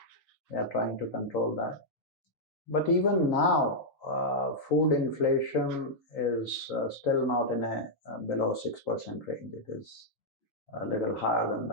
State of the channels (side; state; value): both; normal; correlation -0.06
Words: They are trying to control that. But even now, food inflation is still not in a below 6% range. It is a little higher than